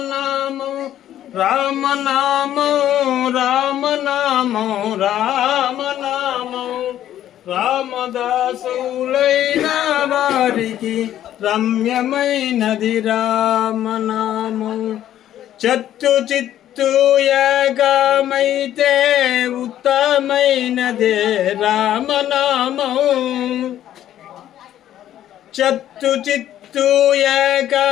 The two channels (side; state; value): right; quieter; 11.8 dB